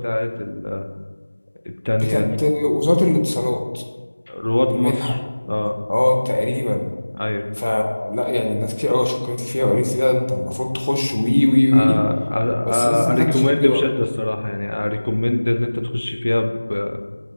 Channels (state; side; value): inverted; both; correlation -1.00